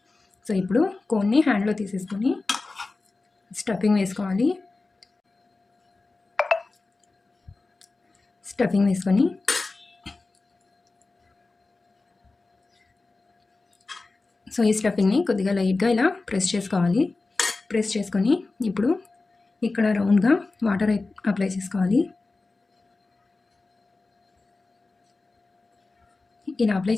సో ఇప్పుడు కోన్ని హ్యాండ్లో తీసేసుకొని స్టఫింగ్ వేసుకోవాలి. స్టఫింగ్ వేసుకొని సో ఈ స్టఫింగ్ని కొద్దిగా లైట్గా ఇలా ప్రెస్ చేసుకోవాలి. ప్రెస్ చేసుకొని ఇప్పుడు ఇక్కడ రౌండ్గా వాటర్ అప్లై చేసుకోవాలి. ఇలా అప్లై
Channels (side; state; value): right; quieter; 3.5 dB